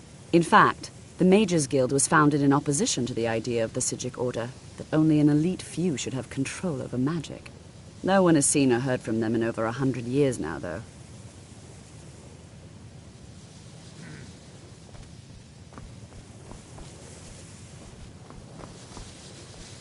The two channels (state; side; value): identical; both; correlation 1.00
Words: In fact, the Mages Guild was founded in opposition to the idea of the Psijic Order, that only an elite few should have control over magic. No one has seen or heard from them in over 100 years now, though.